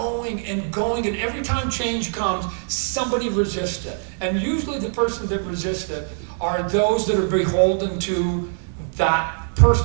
and every time change comes, somebody resists it. And usually the person that resists it are those that are beholden to that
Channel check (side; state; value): left; silent; digital silence